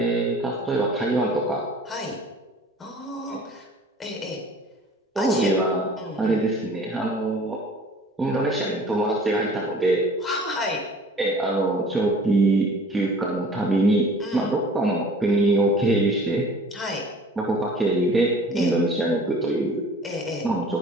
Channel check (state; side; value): normal; both; correlation 0.48